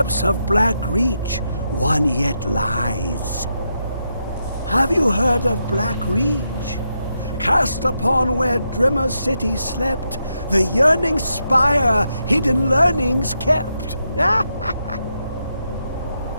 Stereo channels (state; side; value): inverted; both; correlation -0.83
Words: of Black Reach, one yet lies. Have you heard of Black Reach? Cast upon where Drimmer City slept, the yearning spire hidden learnings kept.